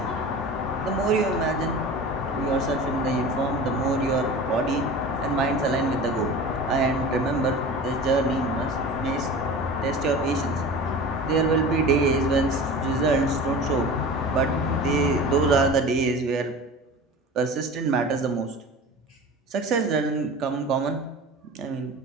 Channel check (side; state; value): both; normal; correlation 0.35